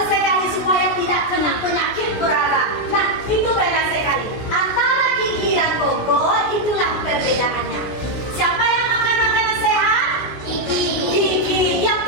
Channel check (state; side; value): late; right; 17 ms